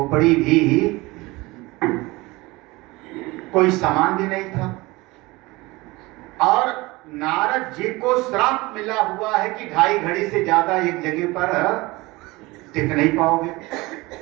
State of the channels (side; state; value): left; quieter; 22.0 dB